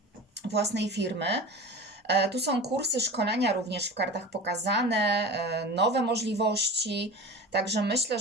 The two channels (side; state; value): both; normal; correlation 0.33